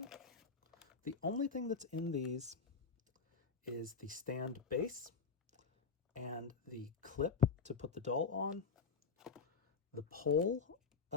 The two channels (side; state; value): right; quieter; 5.3 dB